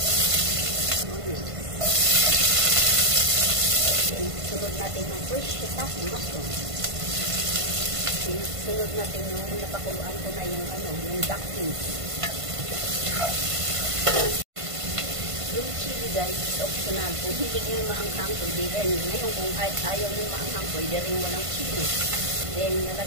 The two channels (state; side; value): late; left; 1.5 ms